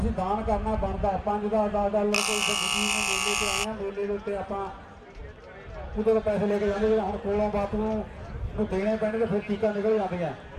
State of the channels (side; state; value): both; identical; correlation 1.00